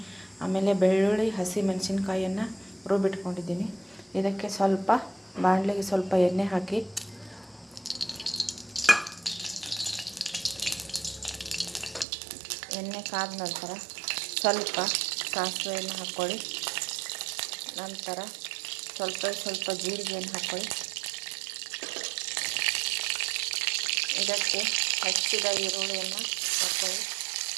ಆಮೇಲೆ ಬೆಳ್ಳುಳ್ಳಿ, ಹಸಿ ಮೆಣಸಿನ್ಕಾಯಿಯನ್ನು ರುಬ್ಬಿಟ್ಕೊಂಡಿದ್ದೀನಿ. ಇದಕ್ಕೆ ಸ್ವಲ್ಪ ಬಾಣಲೆಗೆ ಸ್ವಲ್ಪ ಎಣ್ಣೆ ಹಾಕಿ ಎಣ್ಣೆ ಕಾದ ನಂತರ ಸ್ವಲ್ಪ ಸಾಸಿವೆಯನ್ನು ಹಾಕ್ಕೊಳ್ಳಿ. ನಂತರ ಸ್ವಲ್ಪ ಜೀರಿಗೆಯನ್ನು ಹಾಕ್ಕೊಳ್ಳಿ. ಇದಕ್ಕೆ ಹೆಚ್ಚಿದ ಈರುಳ್ಳಿಯನ್ನು ಹಾಕ್ಕೊಳ್ಳಿ.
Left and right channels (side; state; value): left; drops out; at 12.1 s